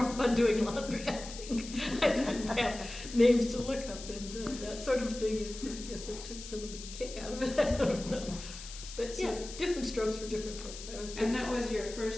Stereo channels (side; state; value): left; noise; hiss, 12 dB below the sound